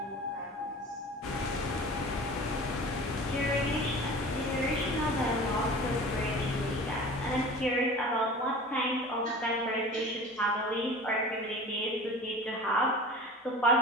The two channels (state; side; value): normal; both; correlation 0.39